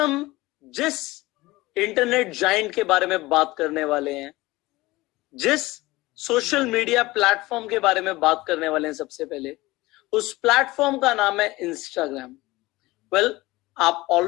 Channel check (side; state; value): right; quieter; 19.9 dB